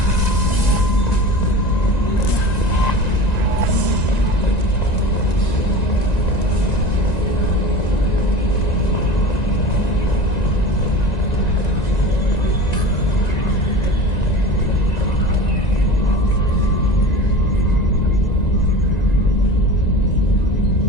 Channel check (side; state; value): right; late; 1.9 ms